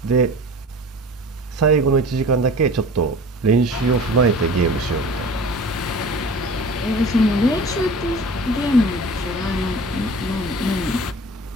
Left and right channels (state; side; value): normal; both; correlation 0.41